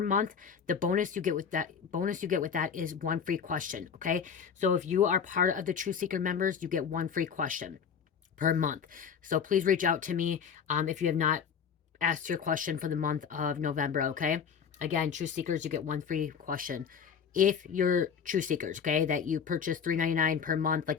The bonus you get with that is one free question. Okay, so if you are part of the True Seeker members, you get one free question per month. So please reach out to me if you have not asked your question for the month of November. Okay, again, True Seekers, you get one free question if you're True Seekers. Okay, that you purchase $3.99 per month,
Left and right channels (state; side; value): quieter; right; 7.0 dB